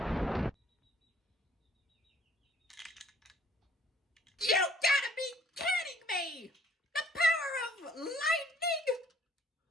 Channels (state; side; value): normal; both; correlation 0.60